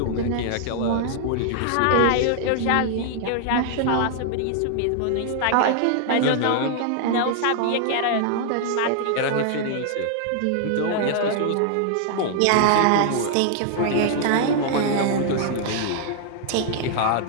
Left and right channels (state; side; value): different; both; correlation 0.00